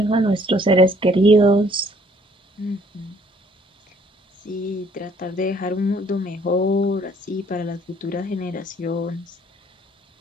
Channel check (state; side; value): normal; both; correlation 0.61